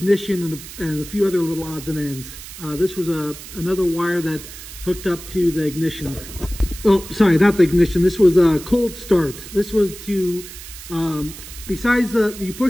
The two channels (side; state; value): right; noise; hiss, 14 dB below the sound